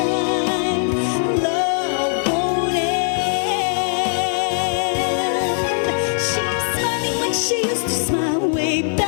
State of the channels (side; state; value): right; silent; 66 dB below the other